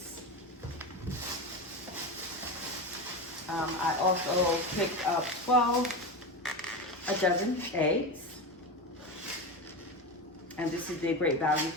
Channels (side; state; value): both; normal; correlation 0.21